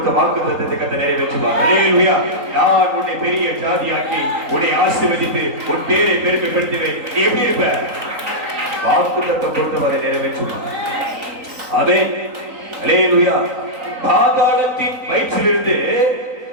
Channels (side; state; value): left; late; 3.9 ms